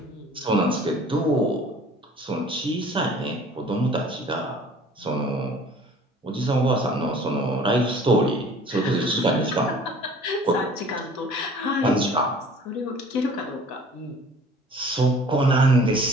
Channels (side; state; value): both; normal; correlation 0.49